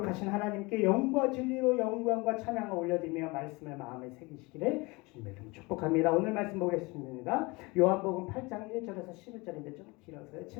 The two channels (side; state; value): right; quieter; 25.2 dB